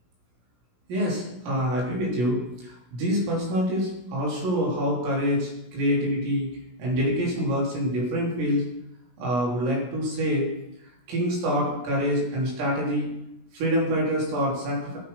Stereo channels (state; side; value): late; left; 16 ms